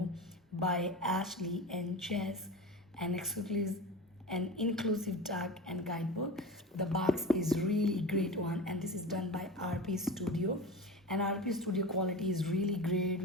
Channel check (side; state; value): both; normal; correlation 0.30